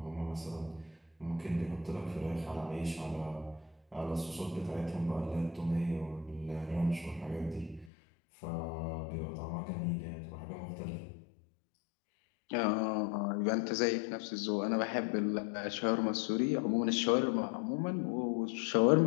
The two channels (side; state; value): right; drops out; at 7.9 s